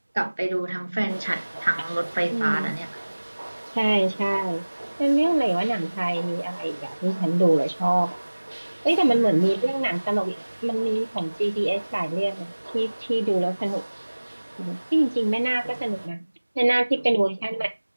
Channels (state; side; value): inverted; both; correlation -1.00